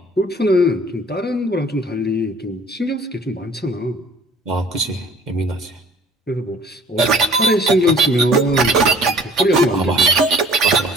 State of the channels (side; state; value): both; normal; correlation 0.51